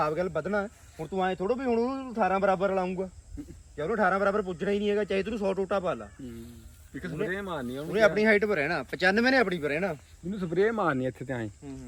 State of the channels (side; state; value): both; identical; correlation 1.00